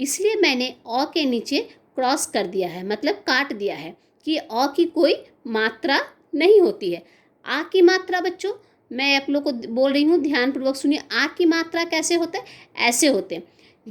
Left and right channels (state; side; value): identical; both; correlation 1.00